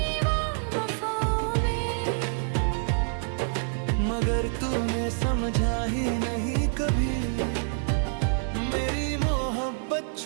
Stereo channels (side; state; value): left; silent; 60 dB below the other